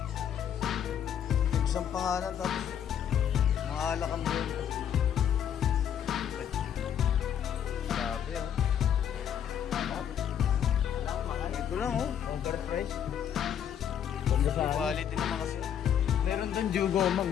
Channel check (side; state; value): right; quieter; 9.1 dB